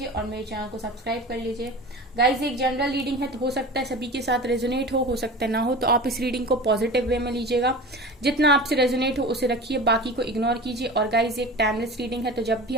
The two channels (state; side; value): normal; both; correlation 0.34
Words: और मेरे चैनल को सब्सक्राइब कर लीजिए। गाइस, एक जनरल रीडिंग है तो हो सकता है सभी के साथ रेजोनेट हो सकता है ना हो, तो आप इस रीडिंग को पॉजिटिव वे में लीजिएगा। जितना आपसे रेजोनेट हो उसे रखिए, बाकी को इग्नोर कीजिए। और गाइस, एक टाइमलेस रीडिंग है तो जब भी